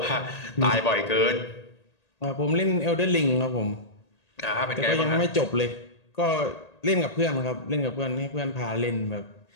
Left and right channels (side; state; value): right; late; 1.8 ms